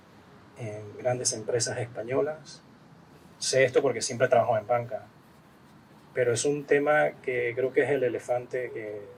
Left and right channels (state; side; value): identical; both; correlation 1.00